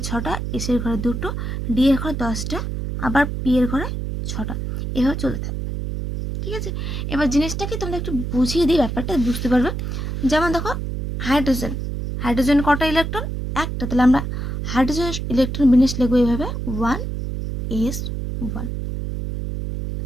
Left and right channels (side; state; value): right; noise; hum, 4 dB below the sound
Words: 6টা, এস এর ঘরে দুটো, ডি এর ঘরে 10টা, আবার পি এর ঘরে 6টা, এভাবে চলতে থাকবে, ঠিক আছে। এবার জিনিসটাকে তোমরা একটু বুঝিয়ে দিই, ব্যাপারটা বুঝতে পারবে। যেমন দেখো হাইড্রোজেন, হাইড্রোজেন কটা ইলেকট্রন? একটা, তাহলে আমরা হাইড্রোজেন ইলেকট্রন বিন্যাস লিখবো এইভাবে 1s1,